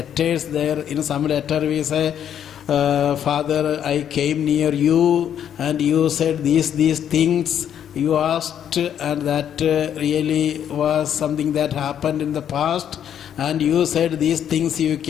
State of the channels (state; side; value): quieter; right; 9.4 dB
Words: there. In some letter we say, Father, I came near you and you said these things you asked, and that really was something that happened in the past, and you said these things you